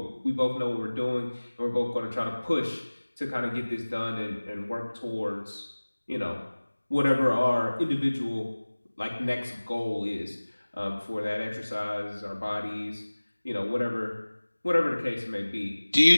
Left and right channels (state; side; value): inverted; both; correlation -1.00